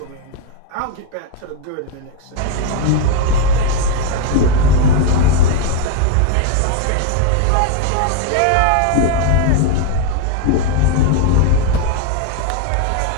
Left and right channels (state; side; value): different; both; correlation 0.01